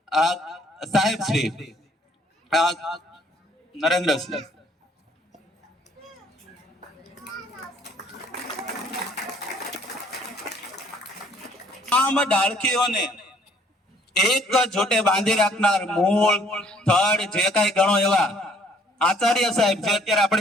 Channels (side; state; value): both; normal; correlation 0.61